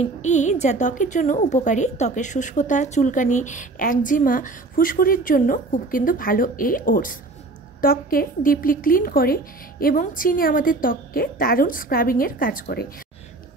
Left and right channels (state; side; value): quieter; left; 3.2 dB